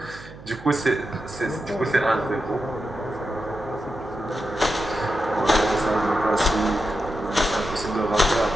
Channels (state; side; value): noise; right; hum, 17 dB below the sound